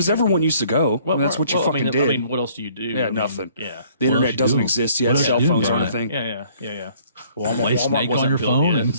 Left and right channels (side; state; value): both; inverted; correlation -0.59